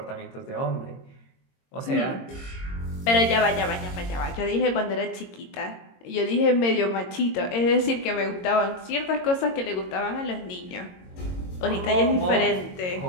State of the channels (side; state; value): right; late; 22 ms